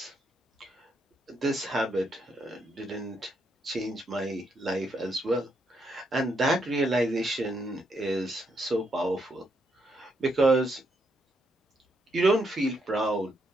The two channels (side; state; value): both; normal; correlation 0.77